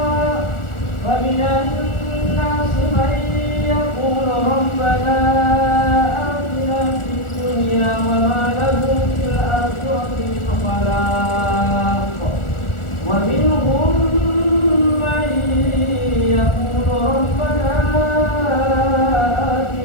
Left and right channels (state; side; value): late; right; 1.4 ms